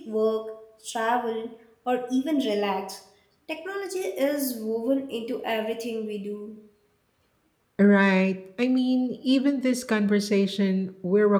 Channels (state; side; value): identical; both; correlation 1.00